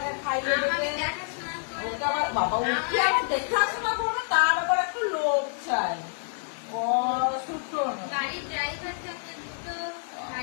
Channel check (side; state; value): right; silent; digital silence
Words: খাইয়ে দেবে। ওকে আবার বাবা উঠে আবার দেখাশোনা করবে, তার আবার একটু লোক চাই।